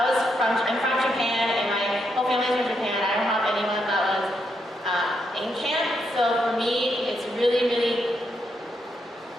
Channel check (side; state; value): both; normal; correlation 0.80